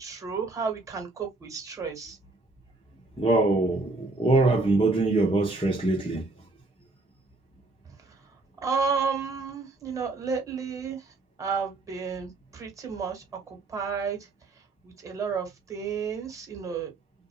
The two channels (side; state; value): left; quieter; 3.2 dB